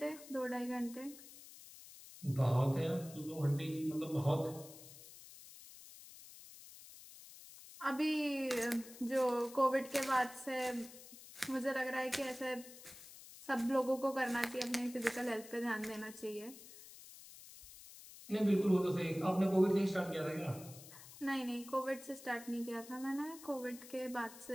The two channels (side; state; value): left; noise; hiss, 17 dB below the sound